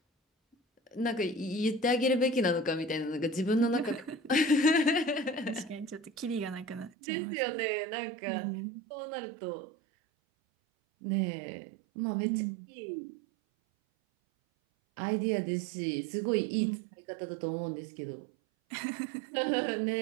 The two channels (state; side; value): drops out; left; at 6.9 s